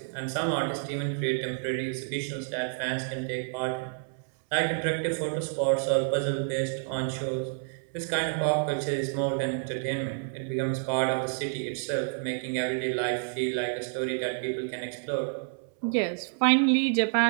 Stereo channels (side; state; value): left; silent; 59 dB below the other